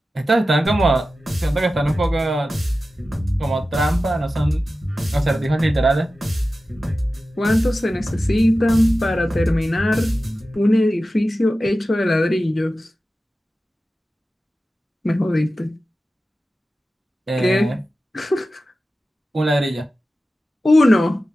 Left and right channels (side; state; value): both; normal; correlation 0.94